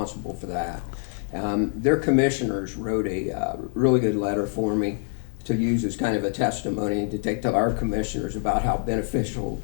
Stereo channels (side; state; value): right; silent; 57 dB below the other